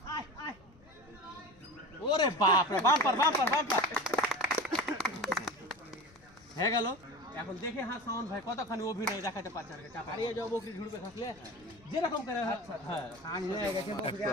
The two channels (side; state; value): left; noise; rumble, 27 dB below the sound